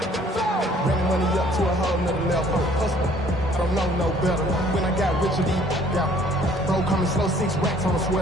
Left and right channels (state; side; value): normal; both; correlation 0.58